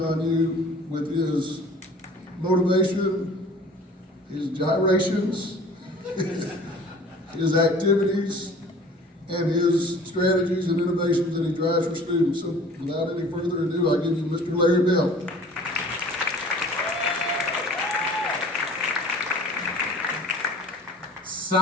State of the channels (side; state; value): both; normal; correlation 0.47